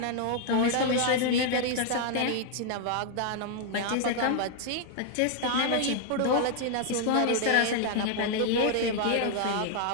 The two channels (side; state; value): both; different; correlation 0.00